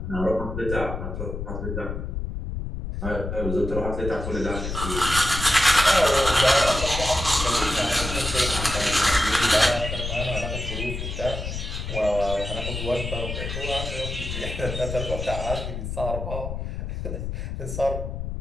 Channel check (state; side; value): noise; left; rumble, 5 dB below the sound